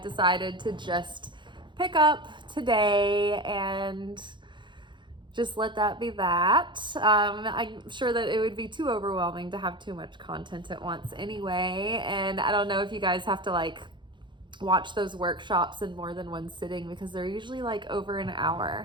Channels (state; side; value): late; left; 0.23 ms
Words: to just pick up today and just let that be that. I'm sure that it would be too overwhelming to have too much content at once anyway. And I don't know if you guys have to watch those workshops in more than one sitting, because they're usually over an